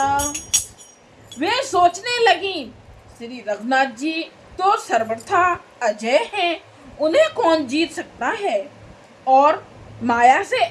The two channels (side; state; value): both; identical; correlation 1.00